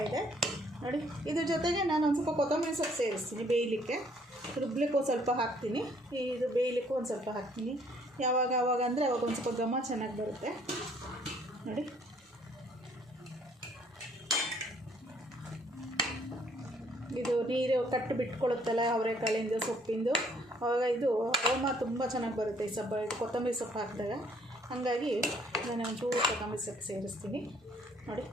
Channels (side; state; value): both; normal; correlation 0.63